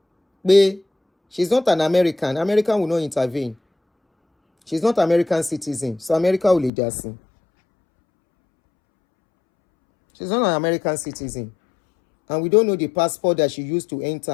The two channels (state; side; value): drops out; right; at 6.7 s